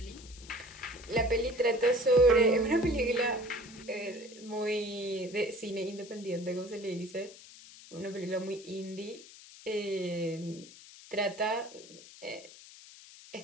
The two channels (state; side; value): noise; left; hiss, 18 dB below the sound